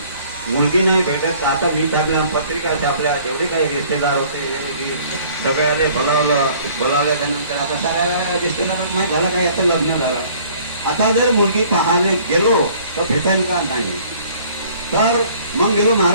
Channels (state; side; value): inverted; both; correlation -0.55